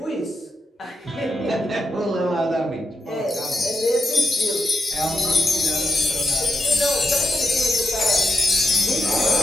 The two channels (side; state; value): both; normal; correlation 0.86